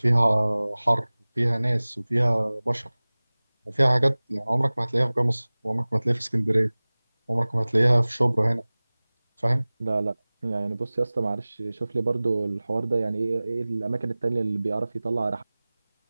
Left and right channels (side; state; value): both; inverted; correlation -0.99